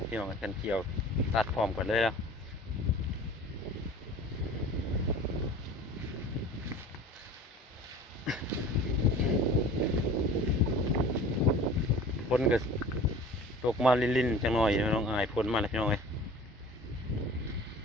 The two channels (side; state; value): both; normal; correlation 0.42